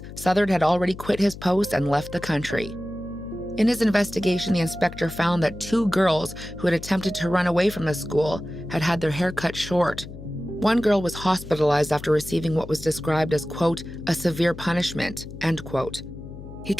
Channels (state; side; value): noise; left; hum, 13 dB below the sound